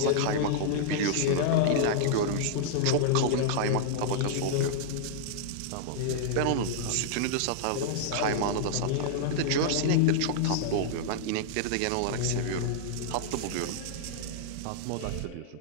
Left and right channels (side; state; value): both; different; correlation -0.01